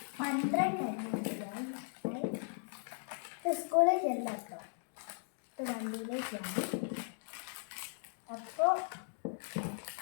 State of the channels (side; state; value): right; silent; 53 dB below the other